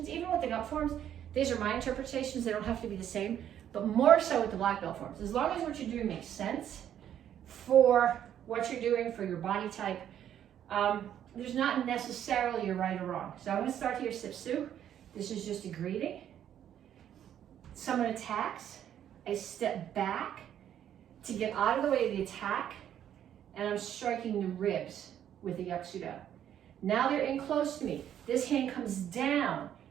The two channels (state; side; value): quieter; left; 10.2 dB